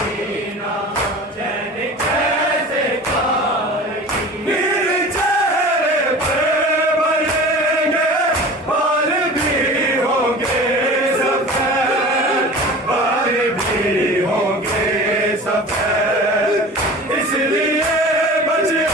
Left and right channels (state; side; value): normal; both; correlation 0.38